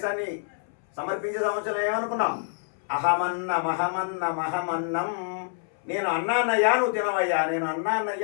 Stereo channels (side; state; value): right; silent; 60 dB below the other